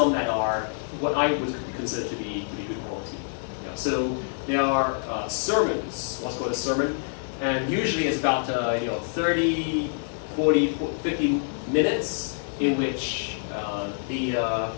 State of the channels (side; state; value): right; silent; 55 dB below the other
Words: that are what I would consider to be good quality. So there are sermons, what's called a sermon, and usually it's about 30, 40, 50 minutes in which the